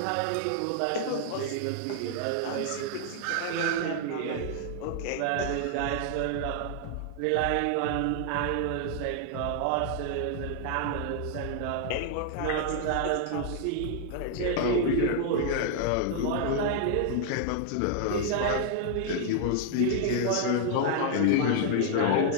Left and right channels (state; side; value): different; both; correlation 0.00